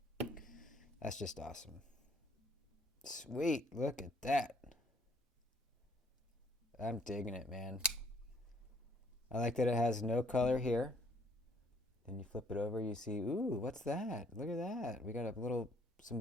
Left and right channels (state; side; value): normal; both; correlation 0.63